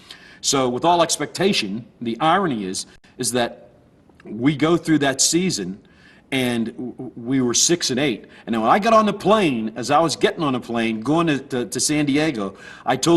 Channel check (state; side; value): identical; both; correlation 1.00